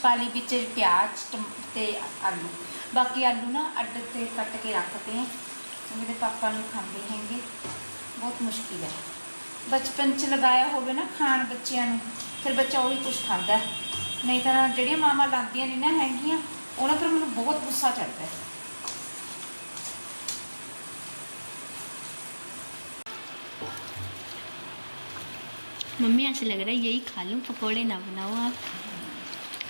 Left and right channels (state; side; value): inverted; both; correlation -1.00